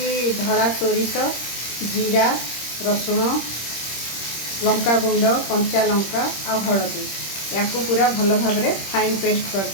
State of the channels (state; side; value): late; right; 26 ms